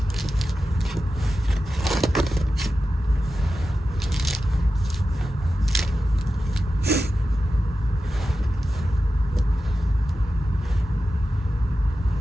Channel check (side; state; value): both; normal; correlation 0.93